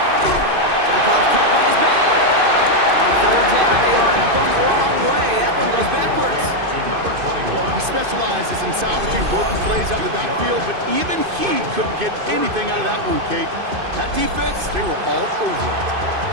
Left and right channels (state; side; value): late; left; 2.5 ms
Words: Jump off caught by his back. On third down, they line up going the wrong way. That one goes backwards. To number 21. He specializes in salvaging broken plays out of the backfield, but even he couldn't get anything out of that one, Kate. That defense, they were all over it.